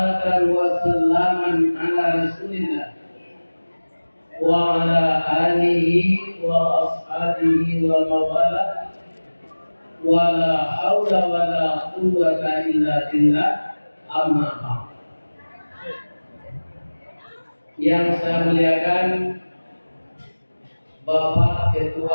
wa salaman ala Rasulillah wa ala alihi wa ashabihi wa mawala wa la hawla wa la quwwata illa billah, amma ba'd. Yang saya muliakan Bapak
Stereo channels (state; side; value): inverted; both; correlation -1.00